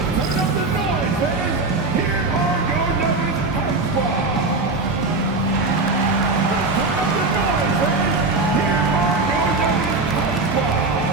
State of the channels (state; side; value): quieter; left; 3.5 dB